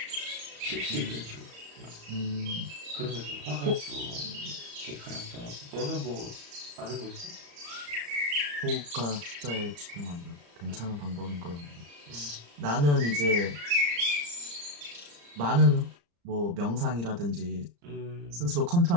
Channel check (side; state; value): left; late; 35 ms